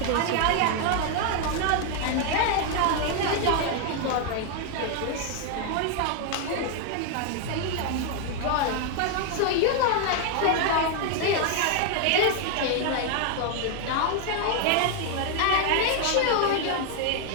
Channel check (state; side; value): different; both; correlation 0.01